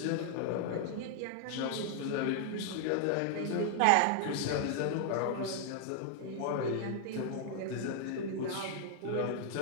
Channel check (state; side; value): different; both; correlation 0.00